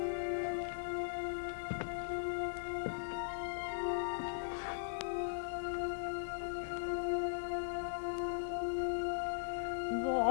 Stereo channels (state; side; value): silent; right; digital silence